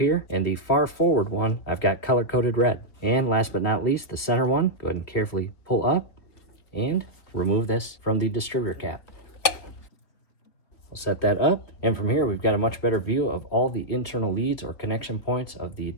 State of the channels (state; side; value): late; right; 3.2 ms